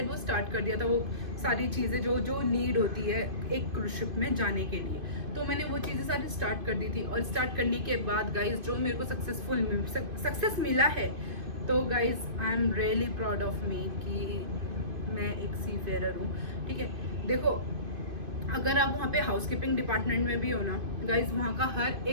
वो स्टार्ट कर दिया था, वो सारी चीज़ें जो नीड होती है एक क्रूज शिप में जाने के लिए। तो मैंने वो चीज़ें सारी स्टार्ट कर दी थी, और स्टार्ट करने के बाद गाइज जो मेरे को सक्सेस मिला है, तो guys I am really proud of me कि मैं एक सी फेयरर हूँ, ठीक है। देखो अगर आप वहाँ पे हाउसकीपिंग डिपार्टमेंट में भी हो ना गाइज, वहाँ का हर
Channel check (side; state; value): left; late; 2.5 ms